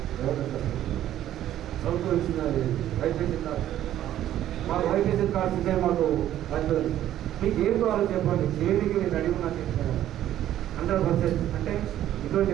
ప్రభుత్వం ఇచ్చిన వైద్య కార్డు మాకు వైద్య కార్డ్స్ ఉంటే మాకు వస్తుంది. మీకు ఏం కావాలో చెప్పండి చేయడానికి నేను అడిగి నాకు చెప్తాను 100%. అంటే ఇటువంటి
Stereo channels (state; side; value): quieter; left; 12.2 dB